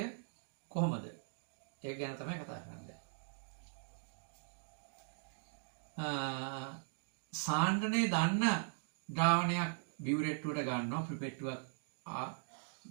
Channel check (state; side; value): silent; left; digital silence